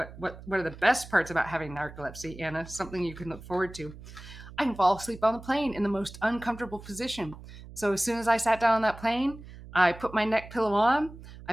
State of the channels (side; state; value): right; noise; hum, 16 dB below the sound